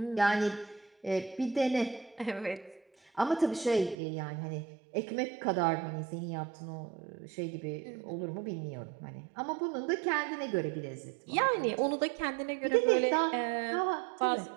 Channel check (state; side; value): drops out; left; at 4.0 s